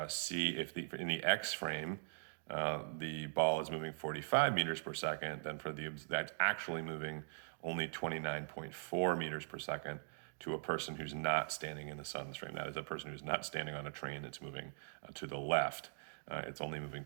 the X frame, the ball is moving 45 meters per second, then for that's actually moving only 29.4 meters per second to a person who's not standing in the sun's frame. That is a person who's not standing on a train that's moving to the left. It's only moving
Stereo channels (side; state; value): left; silent; digital silence